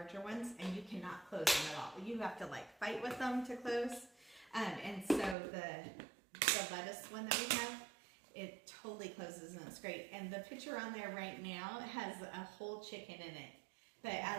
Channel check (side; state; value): left; drops out; at 5.4 s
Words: ones, and you cannot close them at all. You have to like fight with them to close. And so the lettuce one that we have, it totally closes and it's great. And the picture on there right now has a whole chicken in it. But